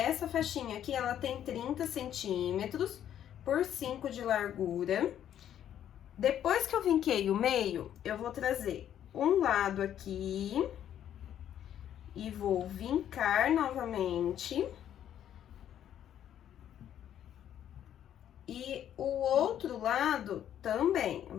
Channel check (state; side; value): quieter; right; 10.4 dB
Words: faixinha aqui, ela tem 30 centímetros por 5 de largura. Depois que eu vinquei o meio, eu vou trazer um lado aqui e vou vincar novamente. E o outro lado também, eu